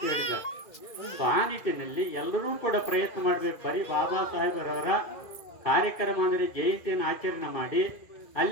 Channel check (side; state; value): right; late; 2.4 ms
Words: ಹೇಳಿದ್ದಾರೆ. ಆ ನಿಟ್ಟಿನಲ್ಲಿ ಎಲ್ಲರೂ ಕೂಡ ಪ್ರಯತ್ನ ಮಾಡಬೇಕು. ಬರೀ ಬಾಬಾ ಸಾಹೇಬರವರ ಕಾರ್ಯಕ್ರಮ ಅಂದರೆ ಜಯಂತಿಯನ್ನು ಆಚರಣೆ ಮಾಡಿ